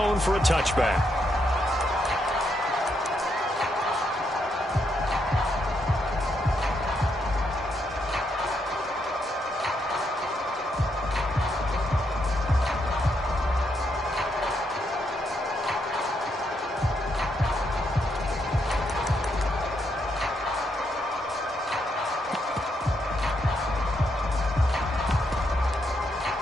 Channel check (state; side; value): normal; both; correlation 0.78